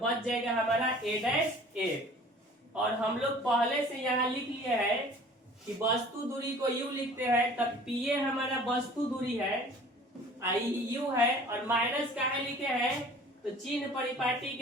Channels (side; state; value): both; normal; correlation 0.48